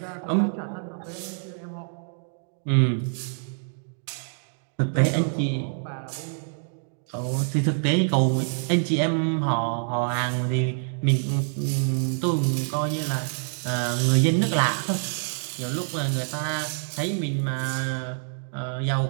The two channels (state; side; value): silent; left; 61 dB below the other